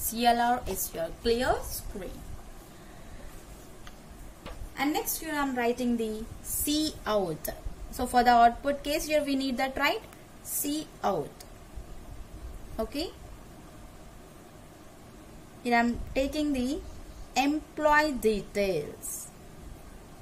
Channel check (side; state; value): both; identical; correlation 1.00